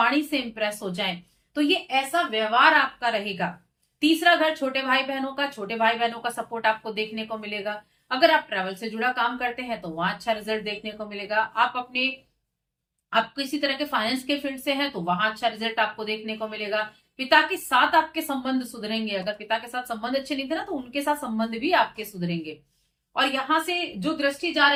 से इंप्रेस हो जाएं, तो ये ऐसा व्यवहार आपका रहेगा। तीसरा घर छोटे भाई बहनों का, छोटे भाई बहनों का सपोर्ट आपको देखने को मिलेगा। अगर आप ट्रैवल से जुड़ा काम करते हैं तो वहां अच्छा रिजल्ट देखने को मिलेगा। आप किसी तरह के फाइनेंस के फील्ड से हैं तो वहां अच्छा रिजल्ट आपको देखने को मिलेगा। पिता के साथ आपके संबंध सुधरेंगे। अगर पिता के साथ संबंध अच्छे नहीं थे ना, तो उनके साथ संबंध भी आपके सुधरेंगे। और यहां से जो दृष्टि जा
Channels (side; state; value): both; identical; correlation 1.00